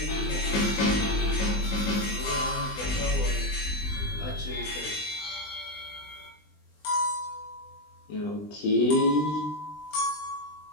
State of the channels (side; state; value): right; late; 20 ms